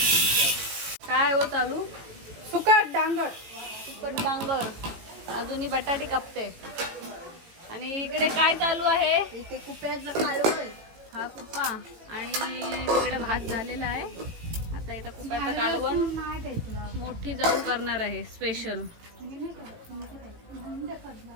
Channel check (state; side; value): late; left; 18 ms